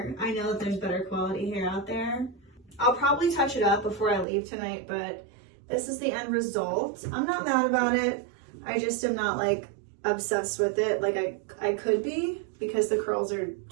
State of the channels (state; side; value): drops out; left; at 4.2 s